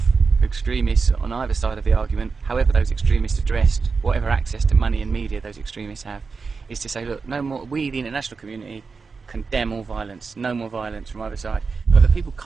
extremists on either side of the argument, however those extremists are dressed, whatever access to money and media those extremists have, is to say, look, no more, we, the international community, condemn all violence, no more violence from either side. But the people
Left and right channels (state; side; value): quieter; left; 4.8 dB